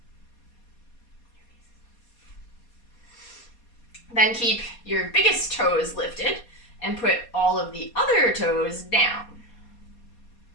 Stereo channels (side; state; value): right; late; 4.2 ms